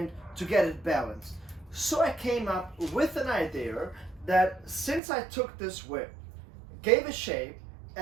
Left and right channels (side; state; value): left; drops out; at 5.0 s